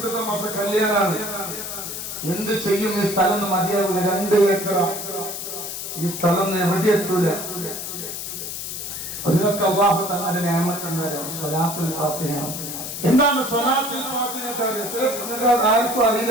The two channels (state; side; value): noise; left; hiss, 6 dB below the sound